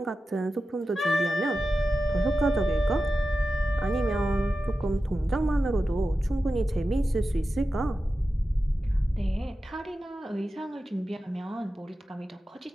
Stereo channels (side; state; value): both; normal; correlation 0.93